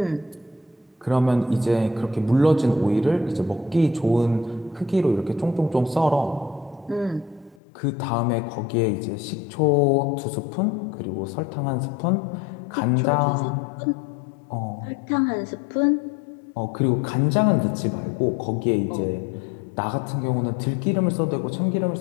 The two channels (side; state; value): right; drops out; at 7.6 s